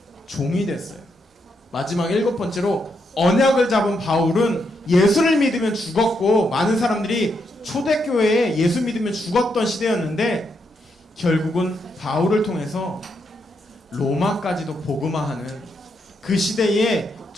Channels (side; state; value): both; normal; correlation 0.80